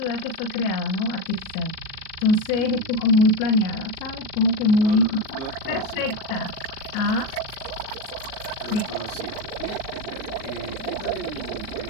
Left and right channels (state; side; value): late; right; 37 ms